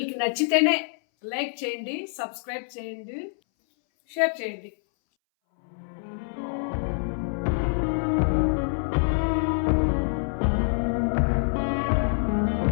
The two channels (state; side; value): silent; right; 61 dB below the other